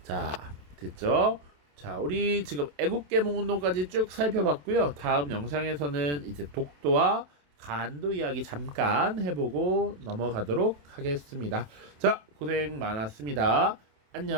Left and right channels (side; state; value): left; late; 27 ms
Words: 자, 됐죠? 자, 우리 지금 애국개몽 운동까지 쭉 살펴봤고요. 다음 영상에서는 이제 독도와 간도 이야기 잠깐 해보고 넘어가도록 하겠습니다. 자, 고생 많았습니다.